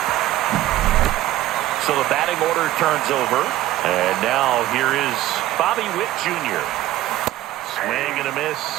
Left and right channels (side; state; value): left; quieter; 14.8 dB